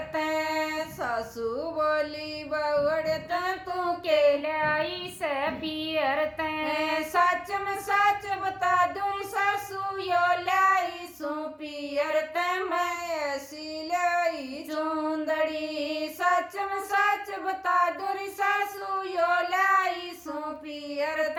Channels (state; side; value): identical; both; correlation 1.00